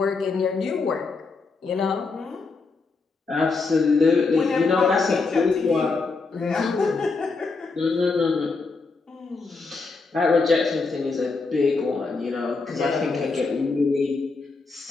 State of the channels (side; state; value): right; quieter; 4.1 dB